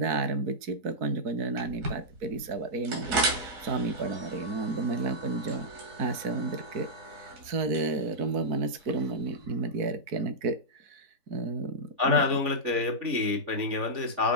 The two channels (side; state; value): left; late; 4.0 ms